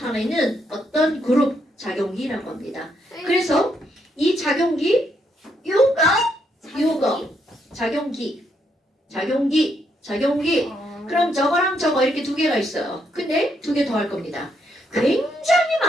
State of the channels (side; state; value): both; normal; correlation 0.76